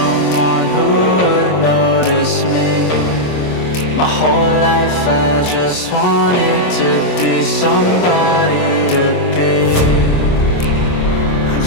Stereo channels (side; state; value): right; late; 28 ms